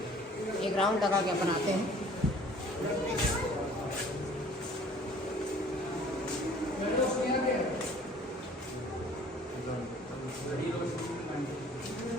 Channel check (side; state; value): both; normal; correlation 0.52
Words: एक राउंड लगा के बनाते हैं।